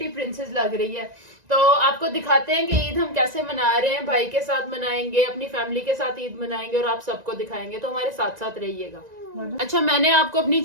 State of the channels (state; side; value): late; left; 1.9 ms